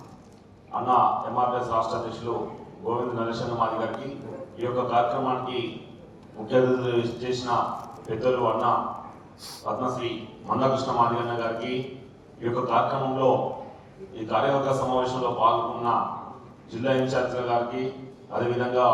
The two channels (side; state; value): both; identical; correlation 1.00